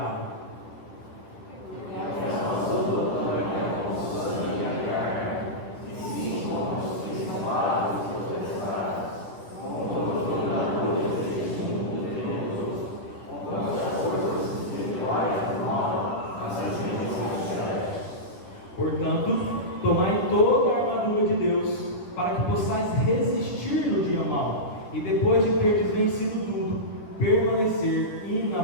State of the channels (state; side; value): late; right; 9.6 ms